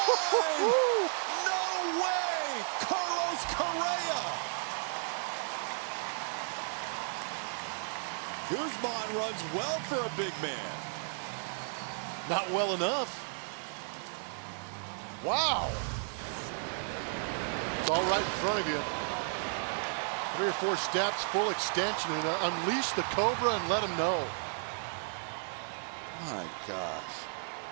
No way. Carlos Correa. Guzman runs well for a big man. Not well enough. Wow. It's all right in front of you. 3 or 4 steps, full extension, and unleash the Cobra and let him know. My gosh.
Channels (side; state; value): left; silent; 55 dB below the other